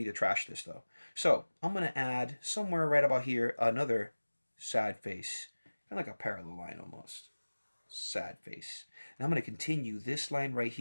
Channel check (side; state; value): both; inverted; correlation -1.00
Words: to trash this though. So I'm going to add somewhere right about here another sad face. Kind of like a parallel line almost. sad face. And I'm going to continue this line right